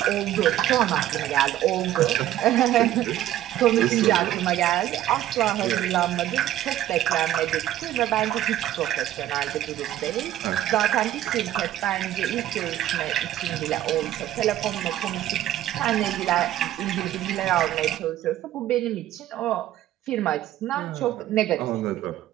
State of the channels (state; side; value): quieter; left; 13.0 dB